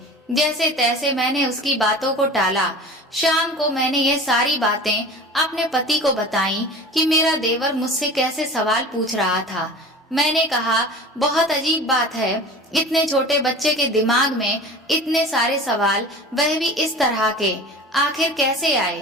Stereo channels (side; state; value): both; normal; correlation 0.37